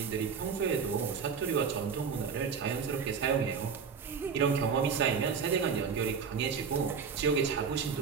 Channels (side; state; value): left; quieter; 6.1 dB